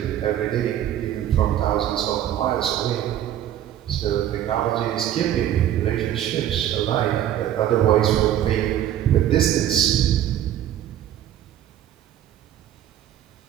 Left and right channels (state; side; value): quieter; left; 11.4 dB